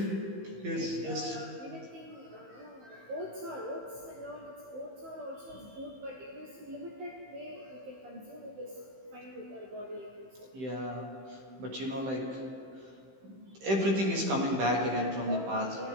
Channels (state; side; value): late; left; 15 ms